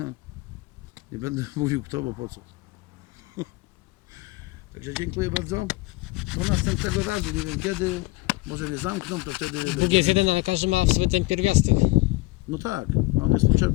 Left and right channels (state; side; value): quieter; right; 21.3 dB